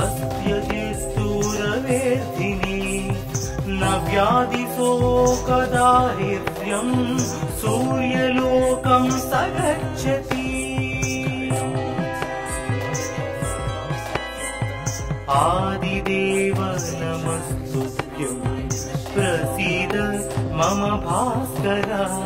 न व्याधिशोकदारिद्र्यं सूर्यलोकं स गच्छति आदिदेव नमस्तुभ्यं प्रसीद मम भास्कर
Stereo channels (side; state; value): both; identical; correlation 1.00